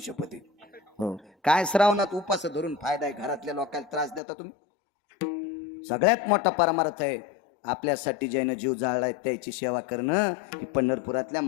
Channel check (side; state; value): right; drops out; at 4.2 s